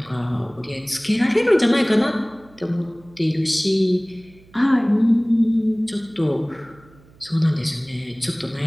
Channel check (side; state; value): right; noise; hum, 27 dB below the sound